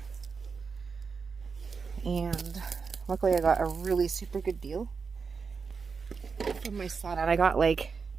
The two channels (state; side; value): quieter; left; 5.2 dB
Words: And luckily I got a really super good deal from my son, and I got like